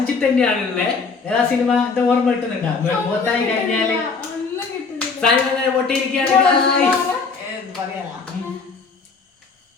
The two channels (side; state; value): right; quieter; 4.7 dB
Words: തന്നെയാണുള്ളത്. ഏതാ സിനിമ എന്താ ഓർമ്മ കിട്ടുന്നുണ്ടോ? മുഖത്തായി കഴിഞ്ഞാല് സാധനം പൊട്ടിയിരിക്കുകയാണ്.